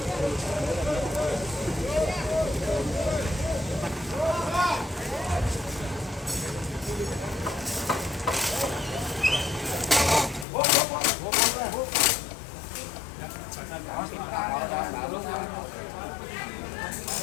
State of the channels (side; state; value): right; drops out; at 10.5 s